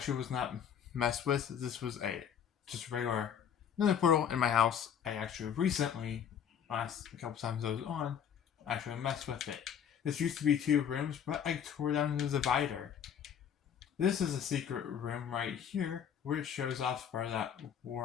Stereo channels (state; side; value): quieter; right; 8.3 dB